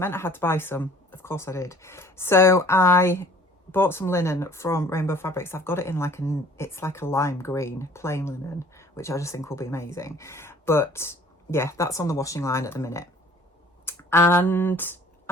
I had to buy some. Of course I did. So I bought some linen from Rainbow Fabrics. I've got it in it's like a lime green plain linen, which I just think will be amazing. But yeah, that's on the washing line at the minute. And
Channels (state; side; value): normal; both; correlation 0.52